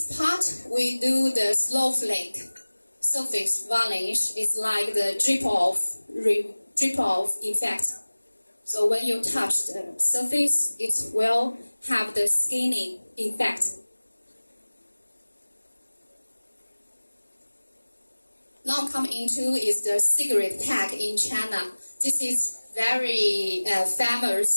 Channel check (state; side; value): inverted; both; correlation -1.00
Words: part, we do the snowflake surface varnish. It's like the drip off effect. So when you touch the surface, it will have the skinning effect. Now come into is the cigarette tag in China. This is very famous